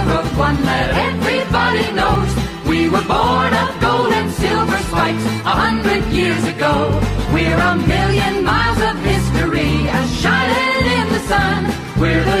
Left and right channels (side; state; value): both; identical; correlation 1.00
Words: one that everybody knows. We were born of gold and silver spikes 100 years ago. We're a million miles of history, as shining in the sun. We're